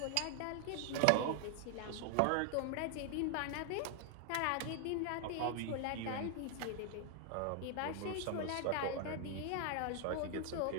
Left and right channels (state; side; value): different; both; correlation 0.00